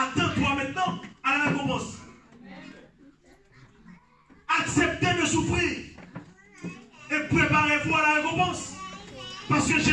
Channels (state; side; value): identical; both; correlation 1.00